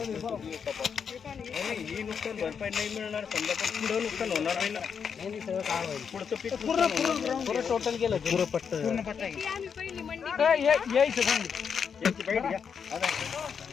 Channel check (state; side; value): quieter; right; 6.8 dB